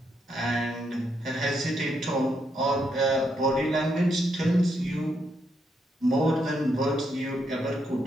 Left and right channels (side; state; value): both; normal; correlation 0.78